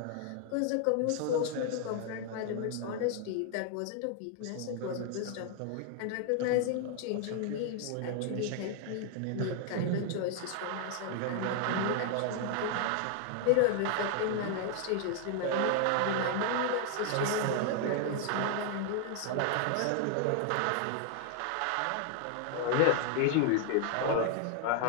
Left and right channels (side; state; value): both; different; correlation 0.00